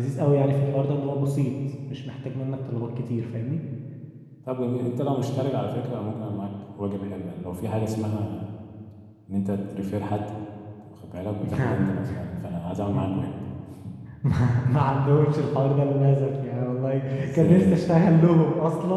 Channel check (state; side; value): identical; both; correlation 1.00